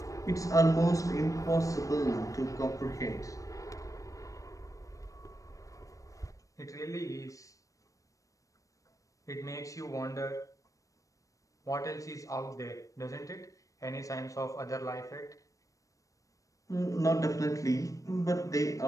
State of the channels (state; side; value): late; right; 0.16 ms